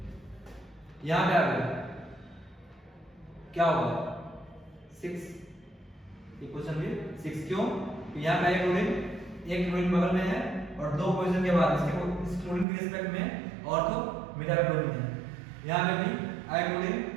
यहाँ पे आ गया, क्या होगा? 6, ये क्वेश्चन भी 6। क्यों? यहाँ पे एक क्लोरीन बगल में है और 2 पोजीशन के बाद इसके इस क्लोरीन के रिस्पेक्ट में ऑर्थो मेटा क्लोरीन है। यहाँ पे भी आया क्लोरीन,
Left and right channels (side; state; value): left; drops out; at 12.7 s